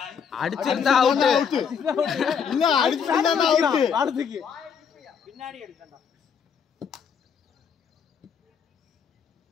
அடிச்சிருந்தா அவுட். இல்ல அடிச்சிருந்தா அவுட். ஆடுதுக்கு பின்னாடி அடிச்சடா.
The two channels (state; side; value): quieter; right; 6.9 dB